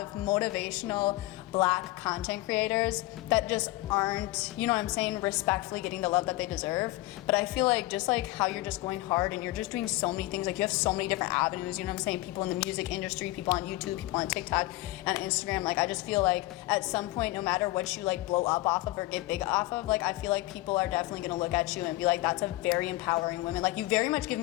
motivational Black content creators that just aren't, you know what I'm saying, respectfully getting the love that they deserve. But I feel like just like how you're just going hard and you're just doing so many things, like you have so many different avenues, you know what I'm saying, people in the music industry, people on YouTube, people on TikTok, and Instagram, like I just feel like at some point, no matter what you like blow up off of or get big off of, like I feel like people are definitely gonna look at you and be like, that's a very empowering woman. Like, you very much give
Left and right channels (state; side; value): quieter; right; 18.6 dB